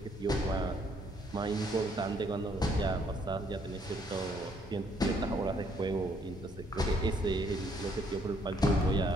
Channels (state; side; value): normal; both; correlation 0.67